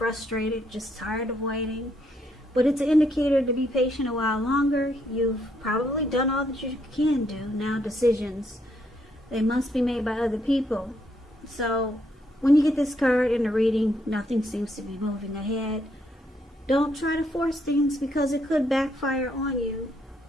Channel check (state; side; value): normal; both; correlation 0.74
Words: just tired of waiting. But it's an indicator to be patient a while longer. You've probably done all that you can do. Now decisions, they must be made by other people. So when you get this card in the reading, nothing seems to be moving ahead. Don't try to force things because it could backfire on you.